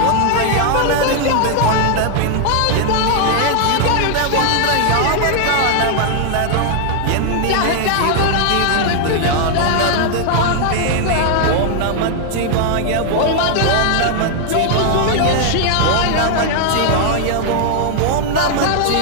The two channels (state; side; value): different; both; correlation 0.00